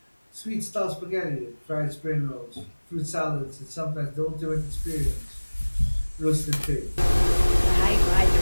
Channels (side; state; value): both; inverted; correlation -1.00